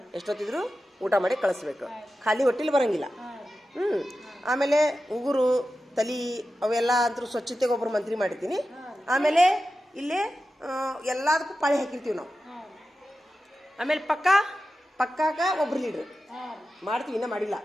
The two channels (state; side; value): normal; both; correlation 0.93